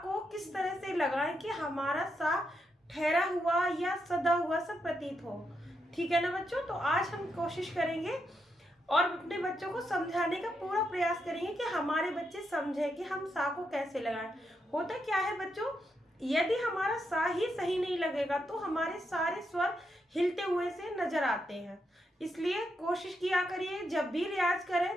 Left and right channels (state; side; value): normal; both; correlation 0.82